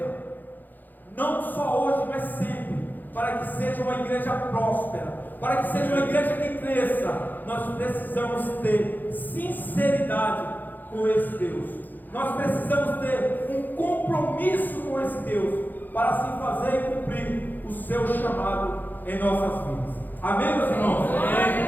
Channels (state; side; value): late; right; 0.086 ms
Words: não só hoje, mas sempre, para que seja uma igreja próspera, para que seja uma igreja que cresça, nós precisamos ter sinceridade com esse Deus. Nós precisamos ter um compromisso com esse Deus, para assim fazer e cumprir o seu chamado em nossas vidas. Amém, meus irmãos?